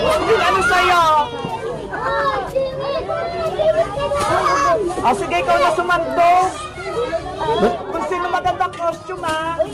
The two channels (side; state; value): both; identical; correlation 1.00